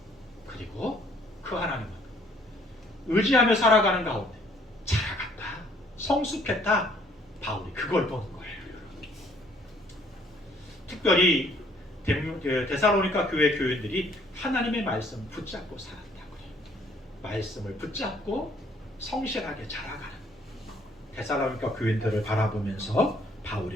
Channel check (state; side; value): normal; both; correlation 0.62